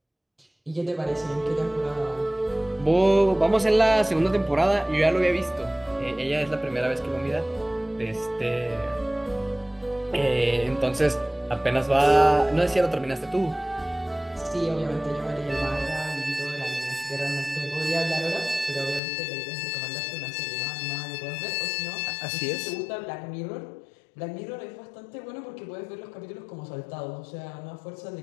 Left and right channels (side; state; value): right; drops out; at 19.0 s